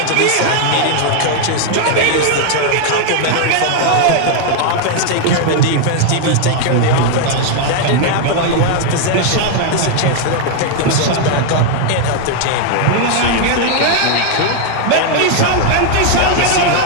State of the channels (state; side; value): different; both; correlation 0.00